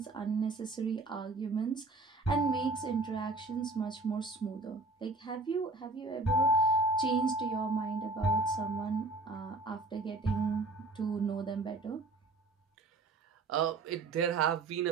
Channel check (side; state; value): left; quieter; 3.3 dB